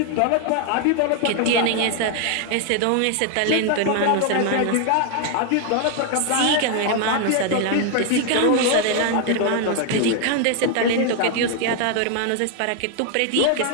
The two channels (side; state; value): both; different; correlation 0.01